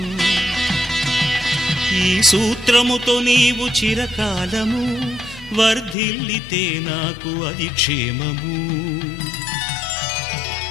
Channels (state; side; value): drops out; right; at 6.0 s